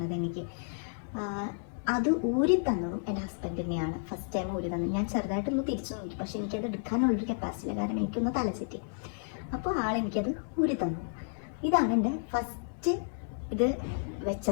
എനിക്ക്. അത് ഊരി തന്നതും എൻ്റെ ഹസ്ബൻഡ് തന്നെയാണ്. ഫസ്റ്റ് ടൈം ഊരി തന്നത്. ഞാൻ ചെറുതായിട്ടൊന്ന് തിരിച്ചു നോക്കി, പക്ഷെ എനിക്കത് എടുക്കാനുള്ളൊരു കപ്പാസിറ്റി ഇല്ല. കാരണം എനിക്കൊന്ന് തല ചുറ്റി. അപ്പോൾ ആളെനിക്കത് ഊരി തന്നു. ഇതാണ് എൻ്റെ ഫസ്റ്റ് ഇത്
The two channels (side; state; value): right; silent; digital silence